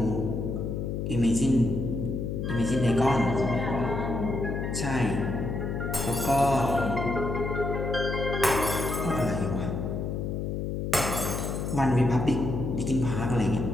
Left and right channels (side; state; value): left; noise; hum, 2 dB below the sound